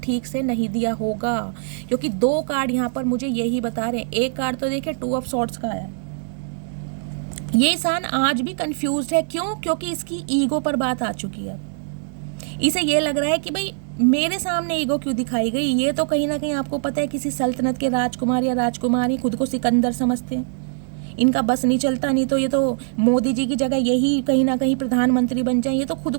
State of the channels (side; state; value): left; silent; 64 dB below the other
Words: ठीक से नहीं दिया होगा, क्योंकि 2 कार्ड यहाँ पर मुझे यही बता रहे हैं। एक कार्ड तो देखिए 2 ऑफ सॉर्ड्स का आया है। ये इंसान आज भी कंफ्यूज्ड है। क्यों? क्योंकि इसकी ईगो पर बात आ चुकी है। इसे ये लग रहा है कि भाई मेरे सामने ईगो क्यों दिखाई गई। ये तो कहीं ना कहीं आपको पता है किसी सल्तनत के राजकुमार या राजकुमारी खुद को सिकंदर समझते हैं, इनका बस नहीं चलता, नहीं तो ये तो मोदी जी की जगह यही कहीं ना कहीं प्रधानमंत्री बन जाए, ये तो खुद